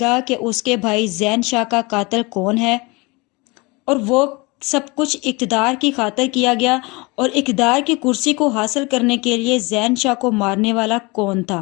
कि उसके भाई ज़ैन शाह का कातिल कौन है और वो सब कुछ इक़्तिदार की खातिर किया गया, और इक़्तिदार की कुर्सी को हासिल करने के लिए ज़ैन शाह को मारने वाला कौन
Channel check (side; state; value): right; quieter; 26.0 dB